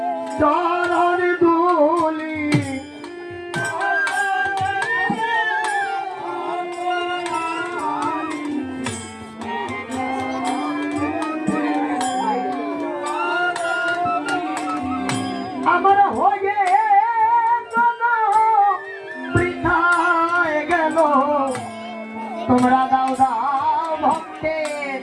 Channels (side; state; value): both; identical; correlation 1.00